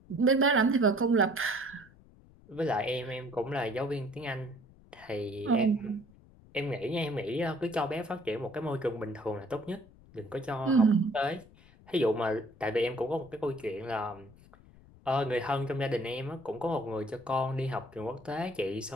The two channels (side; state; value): left; noise; rumble, 24 dB below the sound